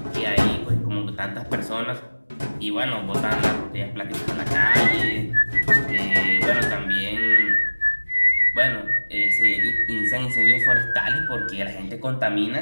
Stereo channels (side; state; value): both; inverted; correlation -1.00